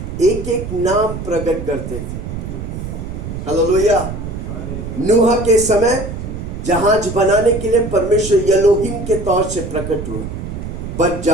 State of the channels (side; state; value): right; noise; rumble, 7 dB below the sound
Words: एक एक नाम प्रकट करते थे। हालेलुया। नूह के समय जहाज बनाने के लिए परमेश्वर एलोहिम के तौर से प्रकट हुआ, पर